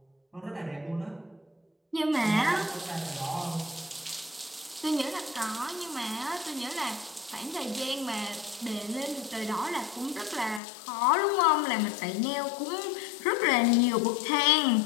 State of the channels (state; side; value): drops out; right; at 10.6 s